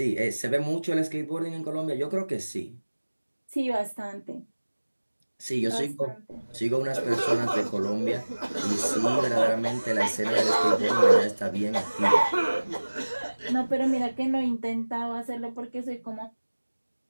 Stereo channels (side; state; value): both; inverted; correlation -1.00